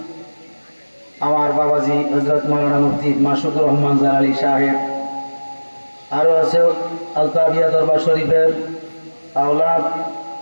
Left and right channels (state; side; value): inverted; both; correlation -1.00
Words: আমার বাবাজি হযরত মাওলানা মুফতি মাসুকুর রহমান জালালী সাহেব, আরো আছে আলতাবিয়া দরবার শরীফের আওলাদ